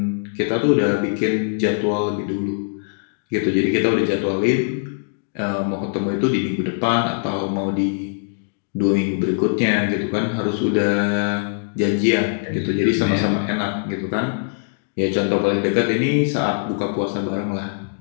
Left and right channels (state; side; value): silent; right; digital silence